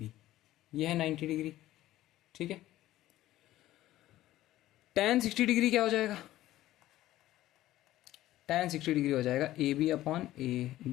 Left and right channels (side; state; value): right; quieter; 14.9 dB